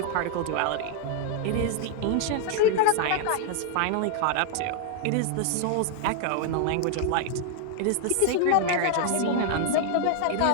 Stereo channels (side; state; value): both; different; correlation 0.00